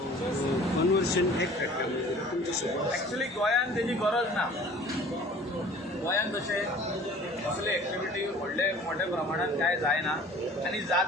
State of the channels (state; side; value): normal; both; correlation 0.47